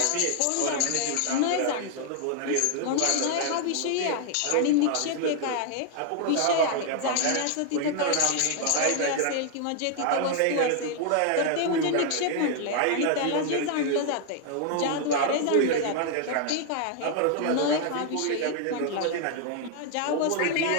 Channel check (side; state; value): both; different; correlation 0.00